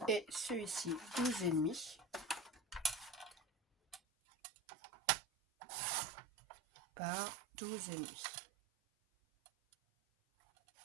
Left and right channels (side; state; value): left; drops out; at 4.0 s